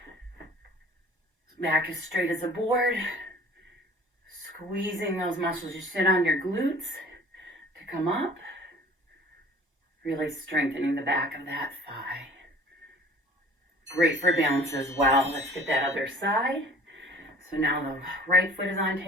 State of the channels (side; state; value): both; normal; correlation 0.48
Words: Back as straight as a board. Squeezing those muscles you sit on, your glutes, to come up. Really strengthening the back of that thigh. Great for balance as well. Let's get that other side. So now the right foot is on